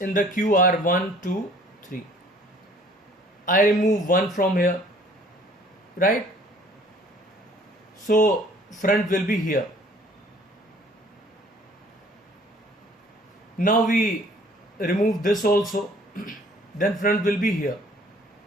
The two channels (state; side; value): normal; both; correlation 0.55